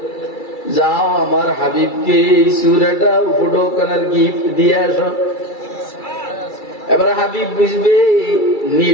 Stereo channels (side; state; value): right; late; 2.3 ms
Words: যাও আমার হাবিবকে এই সূরাটা উপঢৌকনের গিফট দিয়ে আসো। এবার হাবিব বুঝবে